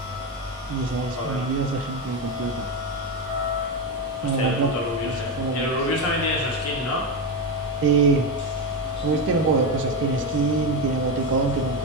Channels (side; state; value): both; normal; correlation 0.13